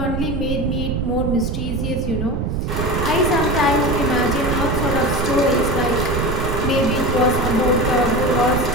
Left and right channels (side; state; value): right; noise; rumble, 1 dB below the sound